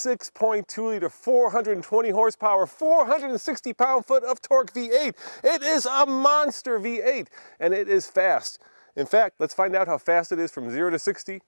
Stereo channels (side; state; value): both; inverted; correlation -1.00